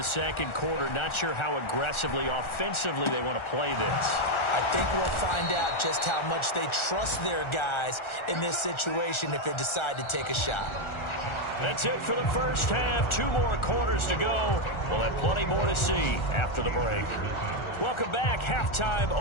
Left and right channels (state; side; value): late; right; 1.4 ms